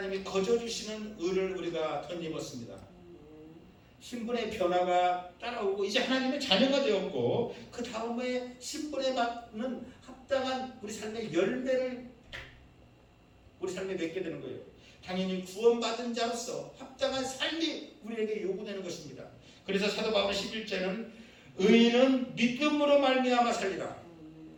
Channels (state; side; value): identical; both; correlation 1.00